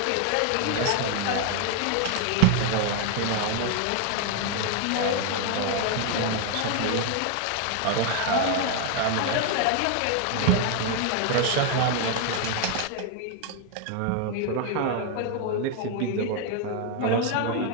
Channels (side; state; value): both; different; correlation 0.00